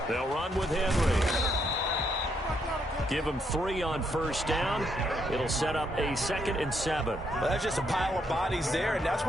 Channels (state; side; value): normal; both; correlation 0.75